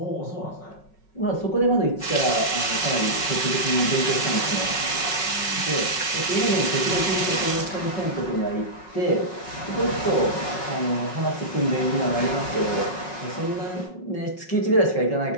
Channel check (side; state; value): right; late; 5.3 ms